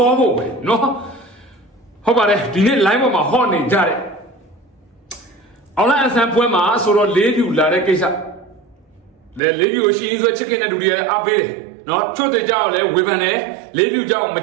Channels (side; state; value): left; drops out; at 9.4 s